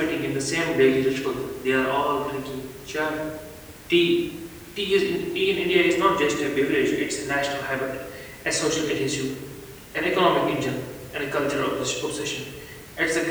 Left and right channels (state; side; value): identical; both; correlation 1.00